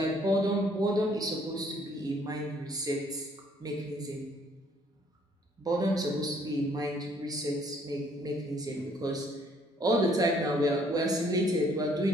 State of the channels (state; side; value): normal; both; correlation 0.63